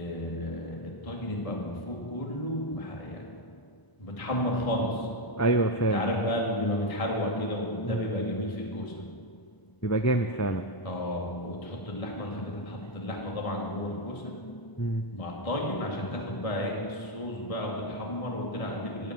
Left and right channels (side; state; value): right; late; 1.0 ms